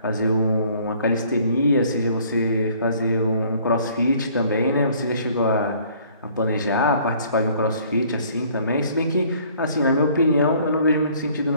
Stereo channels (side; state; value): both; inverted; correlation -0.57